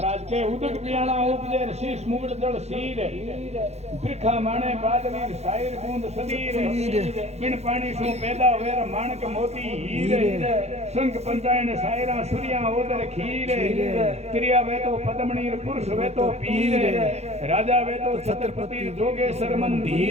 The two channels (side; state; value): left; late; 0.31 ms